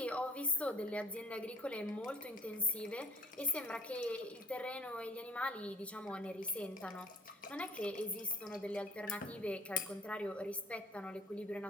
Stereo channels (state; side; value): normal; both; correlation 0.58